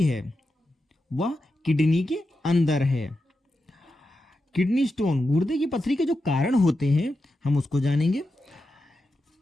वह किडनी के अंदर है। किडनी स्टोन, गुर्दे की पथरी के जो कारण होते हैं हम उसको जानेंगे।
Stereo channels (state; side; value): normal; both; correlation 0.89